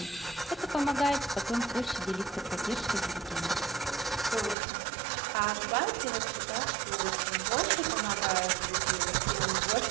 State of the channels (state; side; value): drops out; left; at 4.5 s